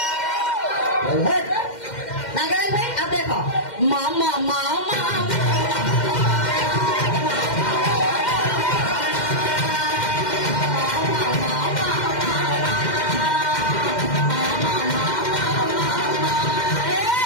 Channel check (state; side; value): late; right; 2.1 ms